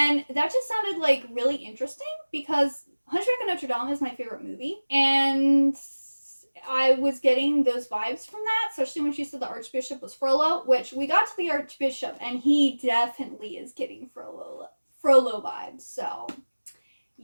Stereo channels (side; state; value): both; inverted; correlation -1.00